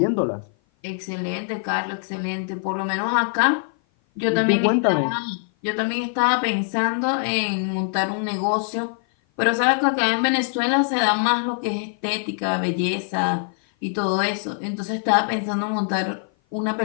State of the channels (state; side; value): silent; right; 55 dB below the other